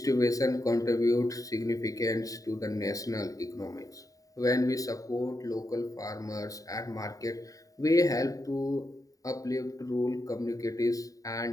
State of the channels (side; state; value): right; late; 0.16 ms